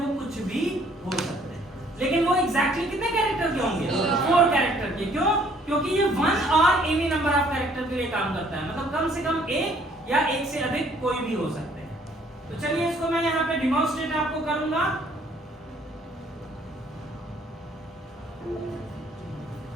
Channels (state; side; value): normal; both; correlation 0.61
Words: कुछ भी हो सकते हैं। लेकिन वो एग्जैक्टली कितने कैरेक्टर के होंगे? 4 कैरेक्टर के। क्यों? क्योंकि ये 1 और एनी नंबर ऑफ कैरेक्टर के लिए काम करता है, मतलब कम से कम एक या एक से अधिक कोई भी हो सकते हैं। तो चलिए इसको मैं यहाँ पे डिमॉन्स्ट्रेट आपको करूंगा।